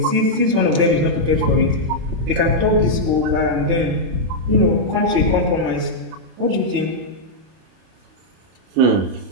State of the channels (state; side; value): late; left; 31 ms